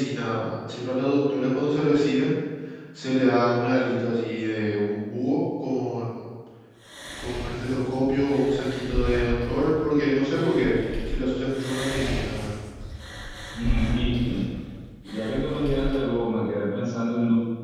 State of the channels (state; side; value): identical; both; correlation 1.00